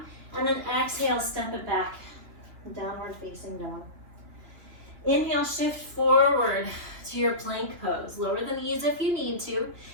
and then exhale, step it back, downward facing dog. Inhale, shift forward to your plank pose. Lower the knees if you need to.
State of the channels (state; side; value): late; left; 2.8 ms